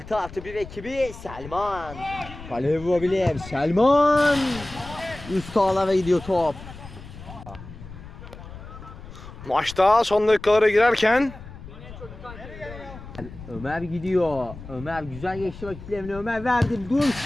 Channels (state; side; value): noise; left; rumble, 15 dB below the sound